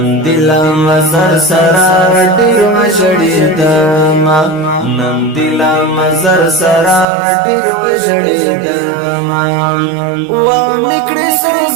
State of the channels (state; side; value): drops out; left; at 7.1 s